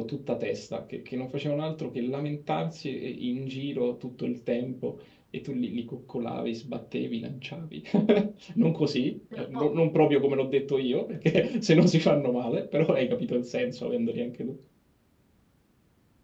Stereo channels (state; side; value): identical; both; correlation 1.00